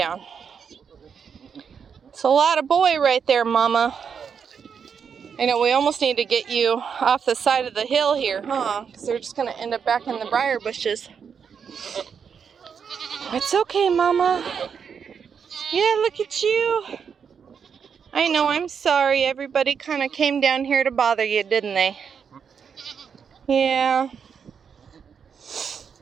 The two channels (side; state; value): left; quieter; 6.8 dB